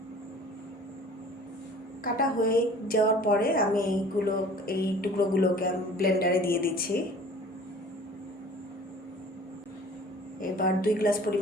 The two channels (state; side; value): normal; both; correlation 0.47